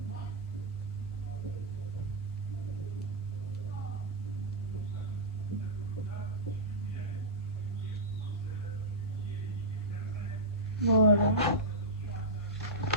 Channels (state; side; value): normal; both; correlation -0.11